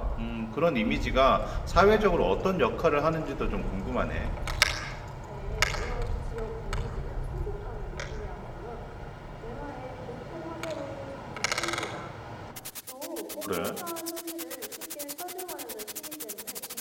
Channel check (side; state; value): both; identical; correlation 1.00